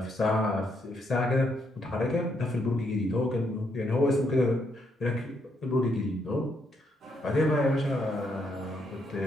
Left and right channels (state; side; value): normal; both; correlation 0.76